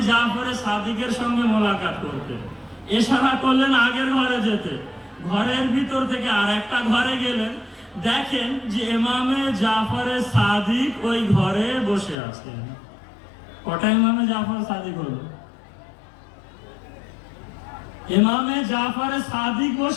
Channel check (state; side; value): drops out; right; at 12.2 s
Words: জাফরে সাদিকের সঙ্গে মোলাকাত করতে। ইশারা করলেন আগের ঘরে যেতে। ঘরের ভিতর থেকে আর একটা ঘরে গেলেন, দেখেন যে ইমামে জাফরে সাদিক ওই ঘরে বসে আছেন। কটা ইমামে জাফর সাদিক হলো? ইমামে জাফরে সাদিক